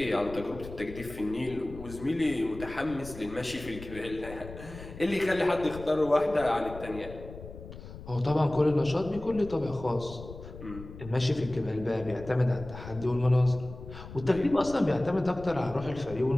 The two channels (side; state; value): left; noise; rumble, 14 dB below the sound